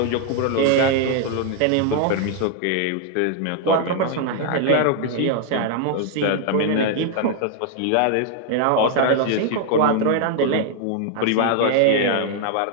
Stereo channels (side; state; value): both; different; correlation 0.00